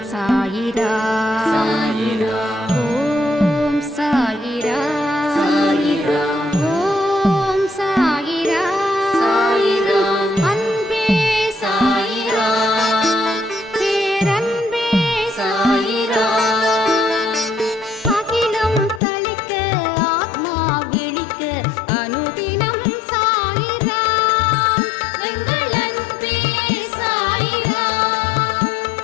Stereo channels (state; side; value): drops out; right; at 19.0 s